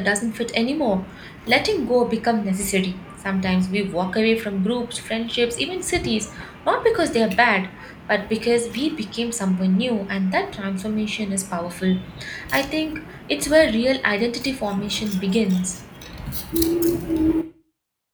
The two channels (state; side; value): identical; both; correlation 1.00